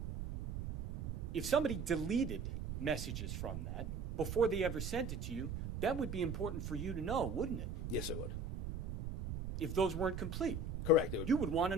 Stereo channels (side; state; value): right; noise; rumble, 5 dB below the sound